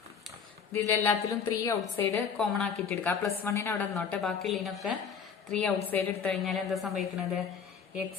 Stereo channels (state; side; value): quieter; right; 6.6 dB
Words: ഇതിലെല്ലാത്തിലും 3 ഔട്ട്സൈഡ് കോമൺ ആക്കിയിട്ട് എടുക്കാം. പ്ലസ് 1 അവിടെ നിന്നോട്ടെ, ബാക്കിയുള്ളതിനൊക്കെ 3 ഔട്ട്സൈഡ് എടുത്തു കഴിഞ്ഞാൽ എന്താ സംഭവിക്കുന്നത്,